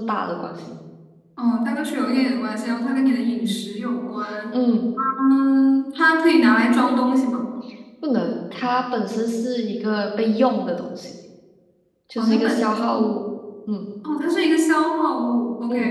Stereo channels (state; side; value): identical; both; correlation 1.00